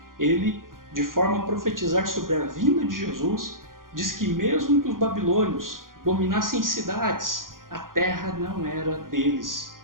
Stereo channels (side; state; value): left; late; 0.90 ms